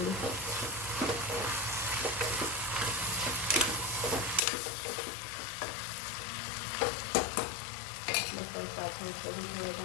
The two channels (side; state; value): right; drops out; at 4.4 s